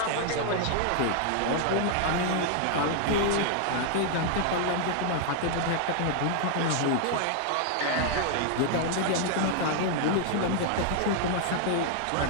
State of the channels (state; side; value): different; both; correlation 0.00